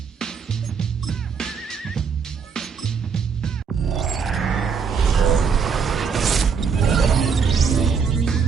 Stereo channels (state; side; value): quieter; left; 6.0 dB